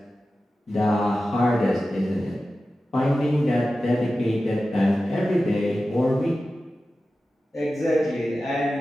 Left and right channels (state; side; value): normal; both; correlation 0.94